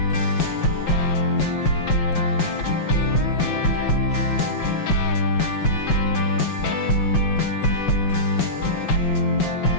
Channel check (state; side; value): late; right; 5.9 ms